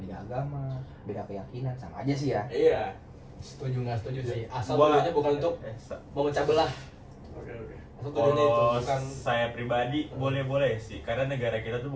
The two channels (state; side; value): identical; both; correlation 1.00